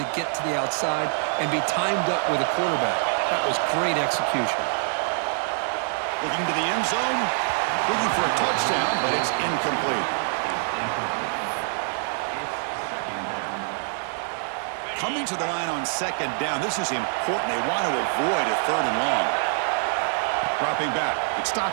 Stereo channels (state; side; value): silent; left; 59 dB below the other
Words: get to the outside and be timed up with a quarterback. That was great execution. Looking to the end zone, looking for a touchdown, but it's incomplete. Coming to the line on second down, this is important. They want to avoid a third and long. Dropping back, it's